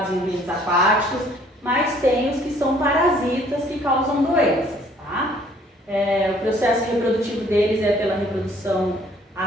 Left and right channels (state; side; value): normal; both; correlation 0.59